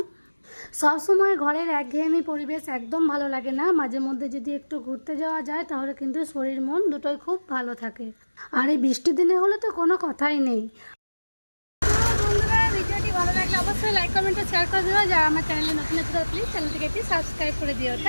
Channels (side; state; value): both; inverted; correlation -1.00